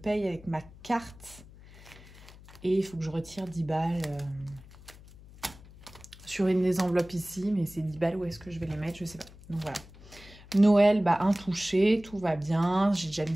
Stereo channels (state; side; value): noise; left; hum, 20 dB below the sound